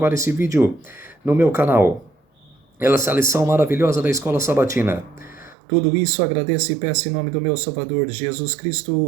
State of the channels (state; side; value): drops out; left; at 5.6 s